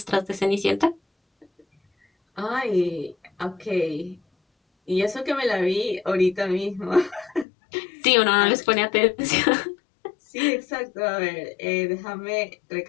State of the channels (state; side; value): drops out; right; at 7.5 s